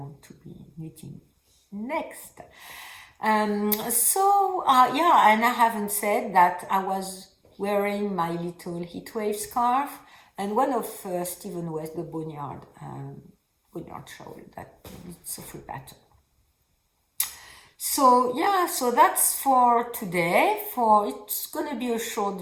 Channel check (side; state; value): both; identical; correlation 1.00